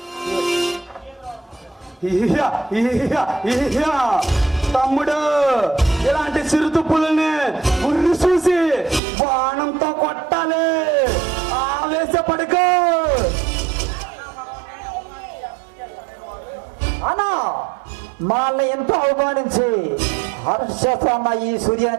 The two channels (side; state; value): left; drops out; at 9.0 s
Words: తమ్ముడు, ఇలాంటి చిరుత పులిని ఉర్రి చూసి బాణంతో కొట్టాలి. ఆవేశపడుకో అన్నా. వాళ్ళని ఎంతో అవమానించి హర్షేస్తున్న ఈ